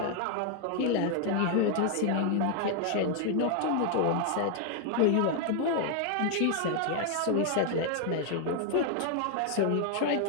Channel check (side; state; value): both; different; correlation 0.00